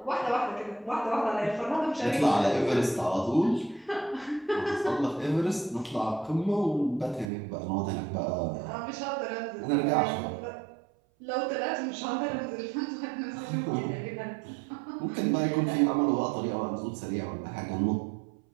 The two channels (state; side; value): drops out; left; at 7.3 s